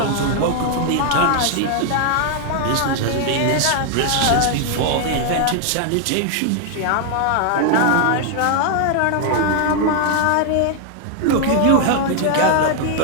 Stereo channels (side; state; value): both; different; correlation 0.00